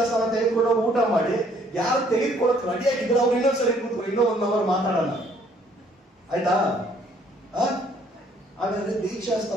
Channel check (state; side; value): normal; both; correlation 0.63